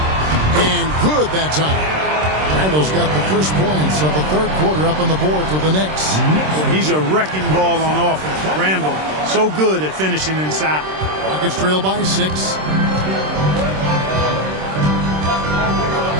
good that time. Randall's got the first points of the third quarter up on the board for the Knicks. He's a wrecking ball on offense. Randall, so good at finishing inside. Rockets trail by 6.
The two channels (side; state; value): left; late; 26 ms